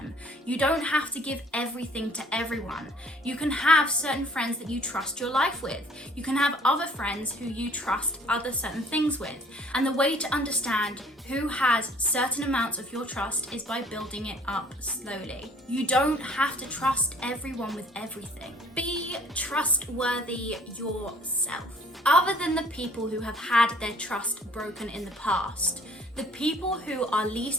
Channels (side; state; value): both; normal; correlation 0.56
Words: You don't have to give everything to everyone. You can have certain friends that you trust your life with. You can have other friends who you trust other certain things with. And the way to understand who has certain amounts of your trust is by building it up slowly. You don't have to trust everyone with everything. Be trustworthy yourself. Other than the people who have had their trust broken in the past, the people who are